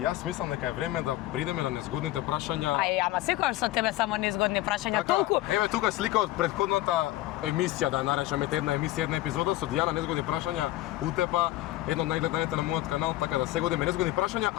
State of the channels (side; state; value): right; quieter; 16.1 dB